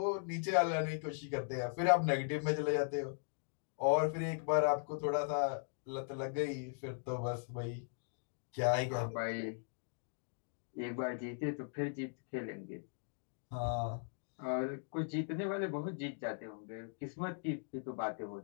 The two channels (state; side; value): silent; right; digital silence